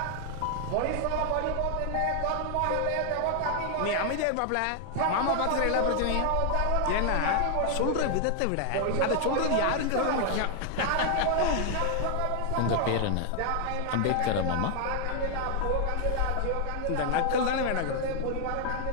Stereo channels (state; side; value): different; both; correlation 0.00